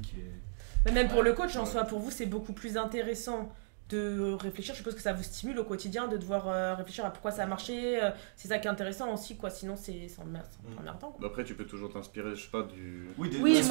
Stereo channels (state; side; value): silent; left; digital silence